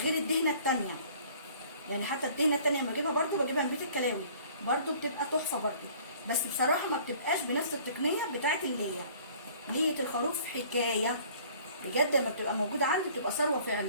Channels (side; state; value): both; inverted; correlation -0.53